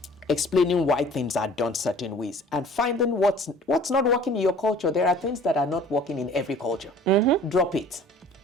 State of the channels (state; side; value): normal; both; correlation 0.49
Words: explaining why things are done certain ways and finding what's not working in your culture. There are things that are not working in every culture. Drop it.